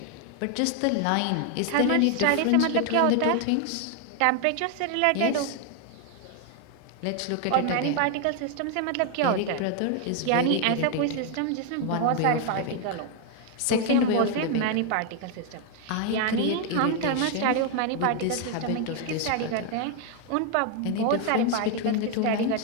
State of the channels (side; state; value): both; different; correlation 0.00